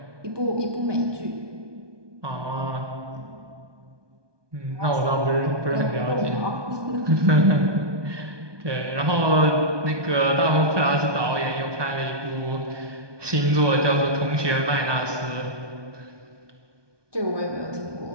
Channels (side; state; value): left; late; 1.2 ms